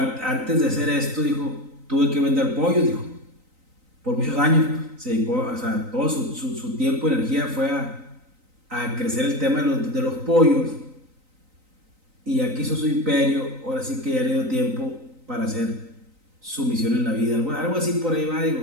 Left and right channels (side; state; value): left; late; 3.9 ms